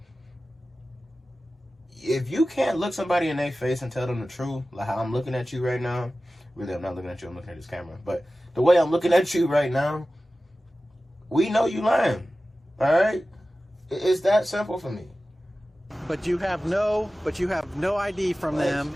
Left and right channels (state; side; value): normal; both; correlation 0.95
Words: If you can't look somebody in their face and tell them the truth, like how I'm looking at you right now, really, I'm not looking at you, I'm looking at this camera, but the way I'm looking at you right now, we know you lying, all right? It's that simple for me. But you have no ID from them,